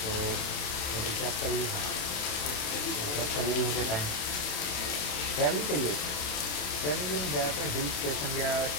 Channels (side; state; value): right; late; 27 ms